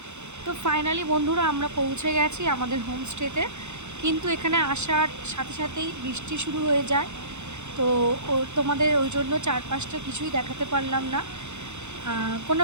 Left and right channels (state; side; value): late; left; 0.83 ms